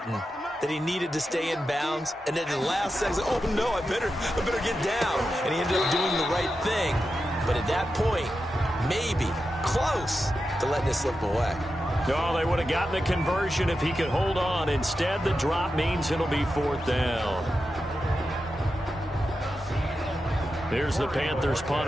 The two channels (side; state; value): both; normal; correlation 0.90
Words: that he needed to stay in bounds, and then in the last second, oh no, I better get down. And he ended up doing the right thing. But at that point, maybe close to letting it slip away. No, they would have gotten the conversion if he could hold on. Instead, the drop means it'll be 4th down. Here's the Panthers